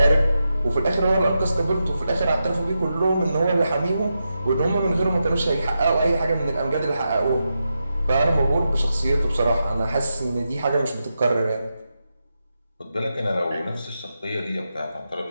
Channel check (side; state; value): both; inverted; correlation -0.88